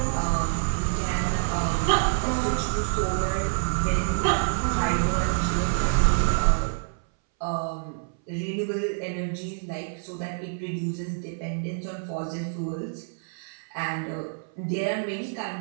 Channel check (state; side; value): silent; left; 60 dB below the other